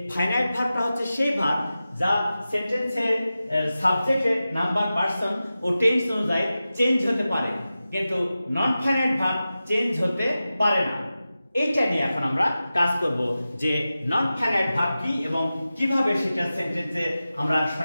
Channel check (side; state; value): both; inverted; correlation -0.94